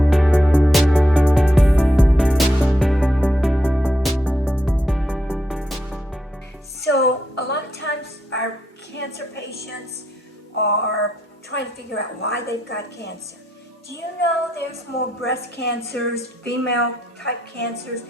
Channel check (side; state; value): both; normal; correlation 0.80